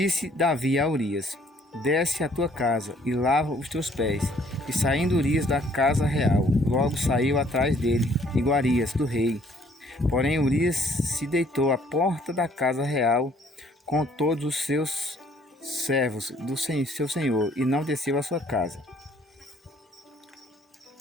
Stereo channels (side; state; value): both; normal; correlation 0.61